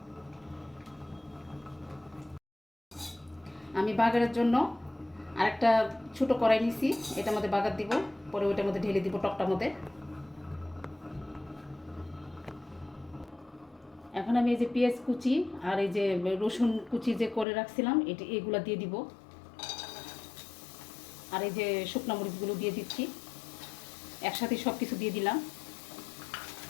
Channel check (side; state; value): right; drops out; at 17.4 s